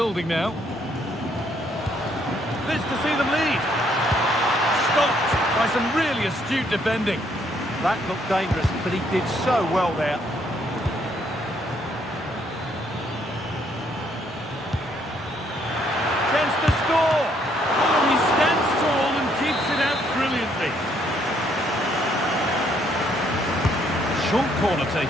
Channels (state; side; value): normal; both; correlation 0.69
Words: now. This to see them lead. Stopped by some really astute defending. That looked dangerous, but he did so well there. Chance to score. Oh, he stands tall and keeps it out brilliantly. Short corner